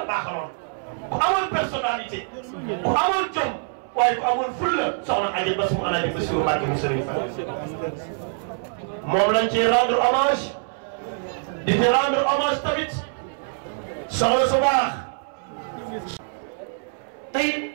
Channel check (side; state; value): left; silent; 62 dB below the other